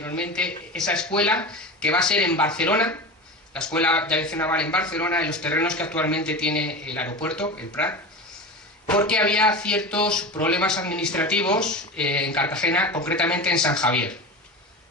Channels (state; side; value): normal; both; correlation 0.28